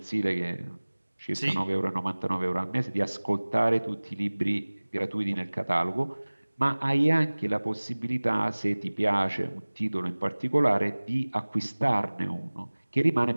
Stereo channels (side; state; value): both; inverted; correlation -1.00